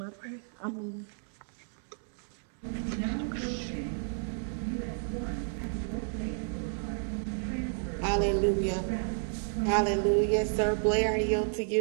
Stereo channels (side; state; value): left; silent; digital silence